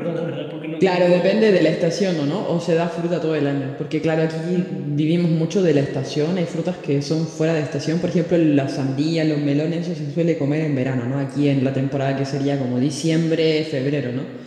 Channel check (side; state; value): both; identical; correlation 1.00